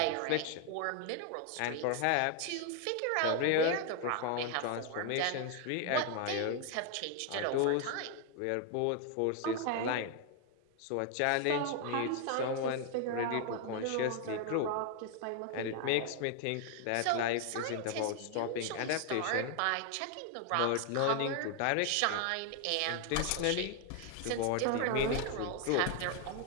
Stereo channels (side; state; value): both; different; correlation 0.00